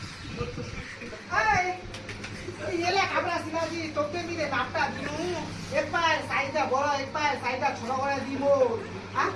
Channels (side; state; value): both; identical; correlation 1.00